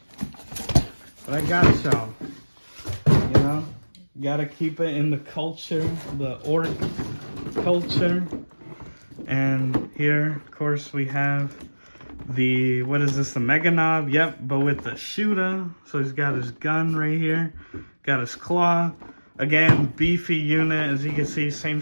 But I got y'all, you know, gotta keep it in the culture, the orc culture. And here, of course, we have the, what is this, the Mega Knob? Yep, but with the shooter. So he's got his gun right here, got his claw. Again, beefy unit, as you can see, same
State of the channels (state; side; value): inverted; both; correlation -1.00